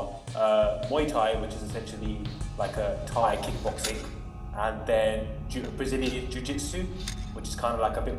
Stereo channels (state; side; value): identical; both; correlation 1.00